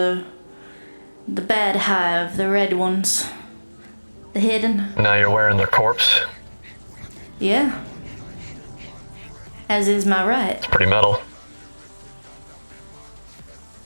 bad hive, the red ones. The hidden. Now you're wearing their corpse. Yeah. As is my right. It's pretty metal.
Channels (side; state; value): both; inverted; correlation -1.00